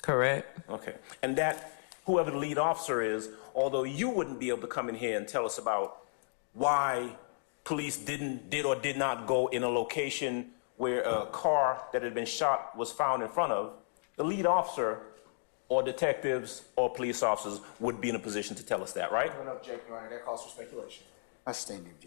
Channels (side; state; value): right; silent; digital silence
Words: Correct. Okay. And that, whoever the lead officer is, although you wouldn't be able to come in here and tell us about why police did or did not go in a location where a car that had been shot was found in front of, the lead officer or detectives or police officers would be in a position to tell us that, right? I don't object, Your Honor. That calls for speculation. I sustain the